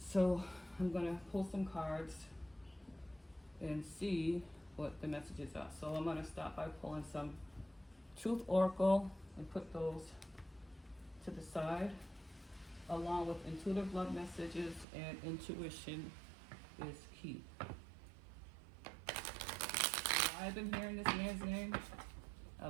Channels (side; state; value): left; drops out; at 14.9 s